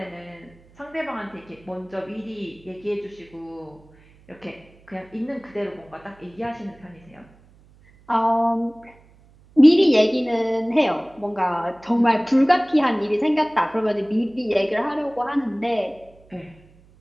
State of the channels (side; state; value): right; noise; hum, 28 dB below the sound